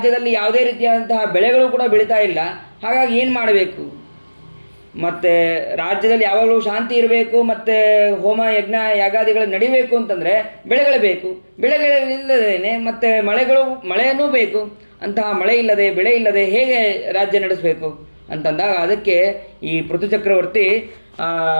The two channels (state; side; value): inverted; both; correlation -1.00